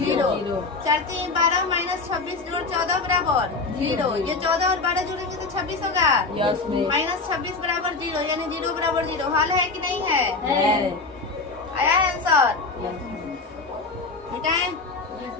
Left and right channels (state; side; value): quieter; right; 3.9 dB